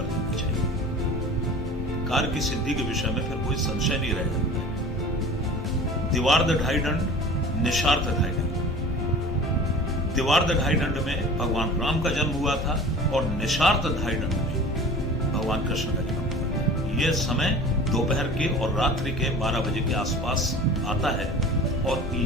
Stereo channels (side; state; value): both; normal; correlation 0.40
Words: देना चाहिए। कार्य की सिद्धि के विषय में फिर कोई संशय नहीं रह जाता है। दिवार्ध ढाई दंड, निशार्थ ढाई दंड। दिवार्ध ढाई दंड में भगवान राम का जन्म हुआ था और निशार्थ ढाई दंड में भगवान कृष्ण का जन्म हुआ था। यह समय दोपहर के और रात्रि के 12 बजे के आसपास आता है और